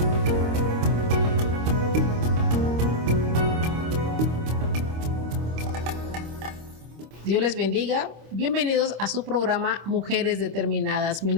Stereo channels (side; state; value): left; late; 25 ms